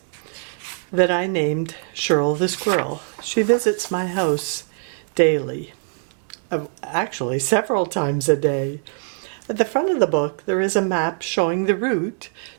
that I named Shirl the Squirrel. She visits my house daily. Actually, several times a day. At the front of the book, there is a map showing the route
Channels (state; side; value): silent; left; digital silence